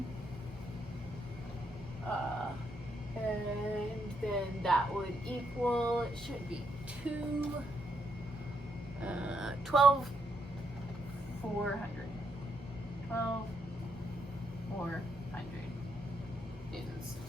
And then that would equal, it should be 12,400 newtons.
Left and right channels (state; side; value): normal; both; correlation 0.77